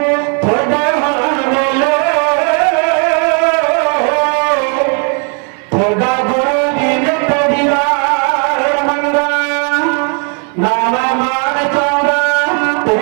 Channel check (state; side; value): quieter; left; 39.6 dB